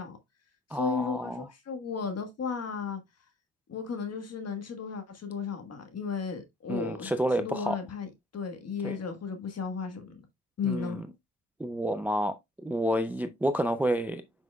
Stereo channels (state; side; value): normal; both; correlation 0.61